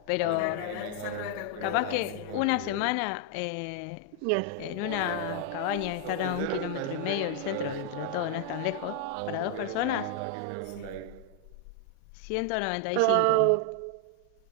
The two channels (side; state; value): both; different; correlation 0.00